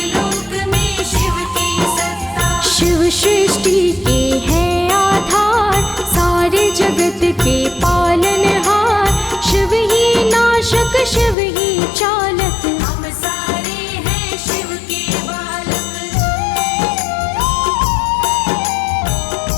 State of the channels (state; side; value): drops out; right; at 11.4 s